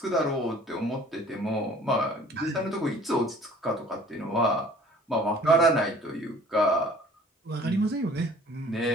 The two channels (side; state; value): both; normal; correlation 0.51